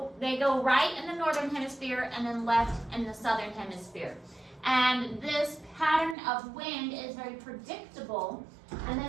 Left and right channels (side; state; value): left; drops out; at 6.2 s